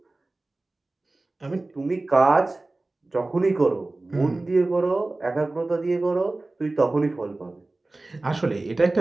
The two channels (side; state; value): left; quieter; 3.0 dB